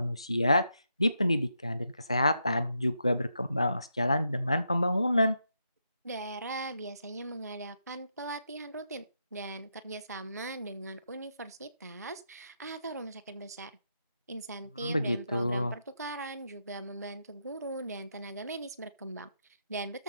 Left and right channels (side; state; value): both; inverted; correlation -0.82